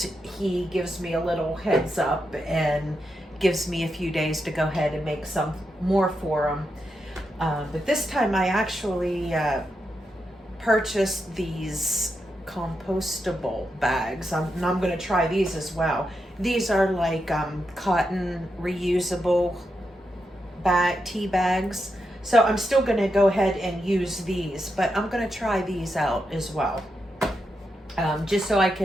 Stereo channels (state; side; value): normal; both; correlation 0.85